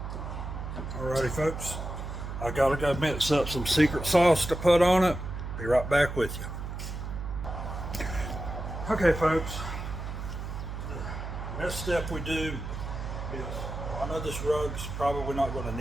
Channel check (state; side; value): noise; right; hum, 6 dB below the sound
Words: Alrighty, folks. I gotta go mix up some secret sauce to put on it. Be right back with you. Okay, folks. The next step we do is, I know this rug's probably not going to